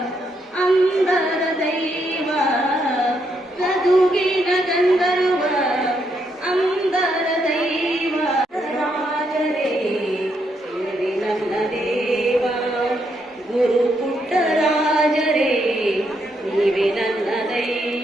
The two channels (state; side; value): normal; both; correlation 0.77